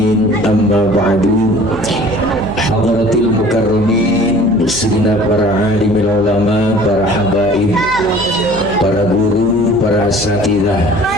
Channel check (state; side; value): noise; left; hum, 15 dB below the sound